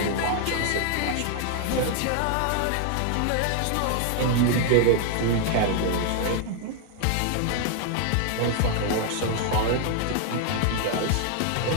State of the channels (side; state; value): both; different; correlation 0.00